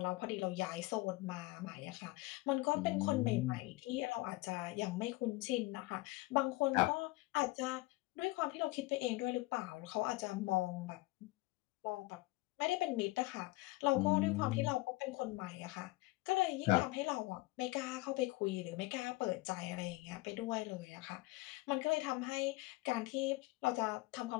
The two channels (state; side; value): quieter; right; 21.0 dB